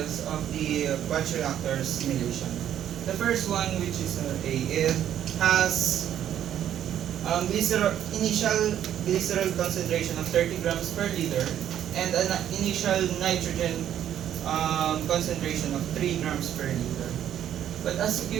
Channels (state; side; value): quieter; left; 10.5 dB